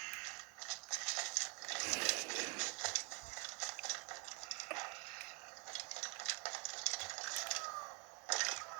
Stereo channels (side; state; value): left; quieter; 33.9 dB